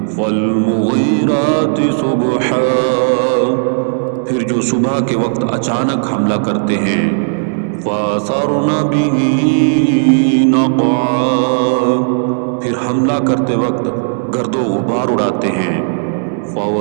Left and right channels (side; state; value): left; silent; digital silence